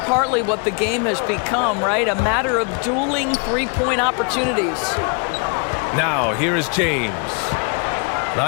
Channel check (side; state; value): right; quieter; 37.0 dB